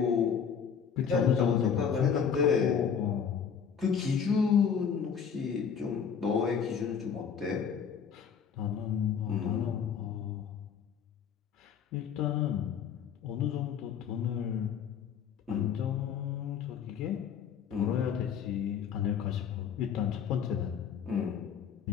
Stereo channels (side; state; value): right; quieter; 7.2 dB